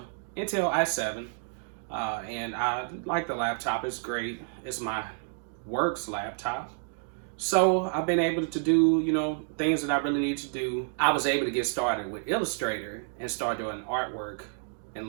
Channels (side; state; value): left; silent; digital silence